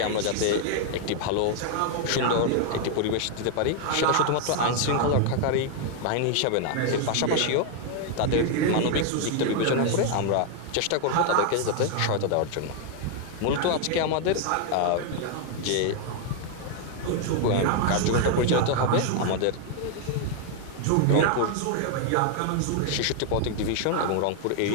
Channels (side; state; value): both; different; correlation 0.00